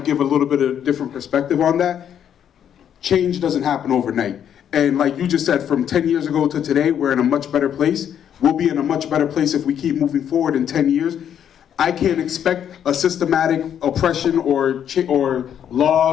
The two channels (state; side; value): quieter; right; 9.2 dB